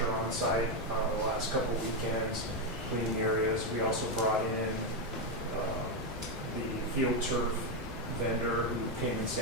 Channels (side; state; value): both; normal; correlation 0.05